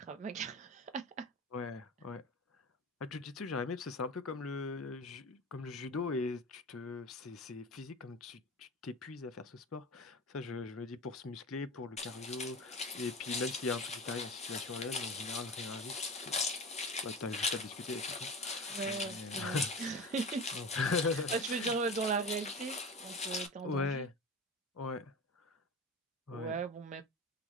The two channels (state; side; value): normal; both; correlation 0.30